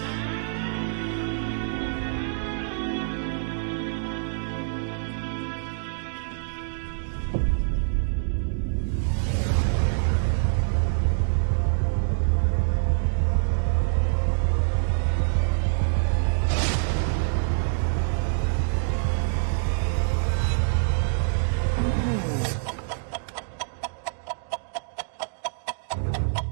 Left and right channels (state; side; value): silent; left; digital silence